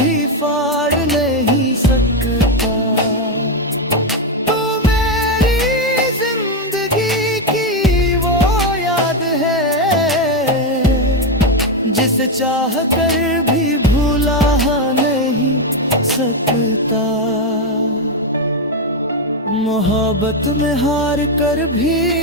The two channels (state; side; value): normal; both; correlation 0.06